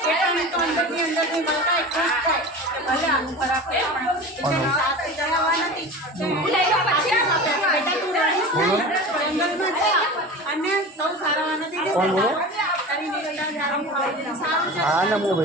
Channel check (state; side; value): normal; both; correlation 0.33